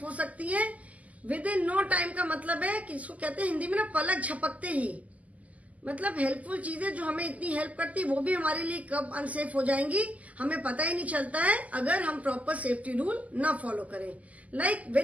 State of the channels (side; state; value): left; late; 0.073 ms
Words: हो सकती है। विद इन नो टाइम का मतलब है कि इसको कहते हैं हिंदी में ना, पलक झपकते ही। मतलब हेल्पफुल चीजें जो हमें इतनी हेल्प करती है वो भी हमारे लिए कब अनसेफ हो जाएंगी हमें पता ही नहीं चलता है, अगर हम प्रॉपर सेफ्टी रूल ना फॉलो करें। Like